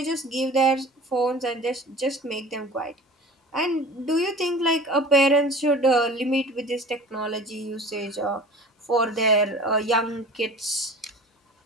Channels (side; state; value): both; normal; correlation 0.40